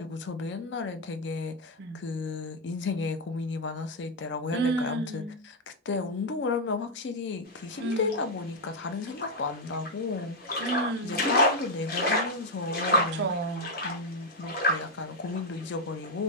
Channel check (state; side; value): normal; both; correlation 0.02